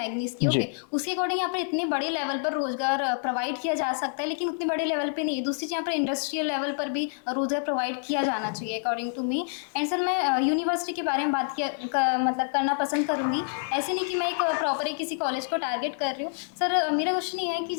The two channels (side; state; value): right; silent; digital silence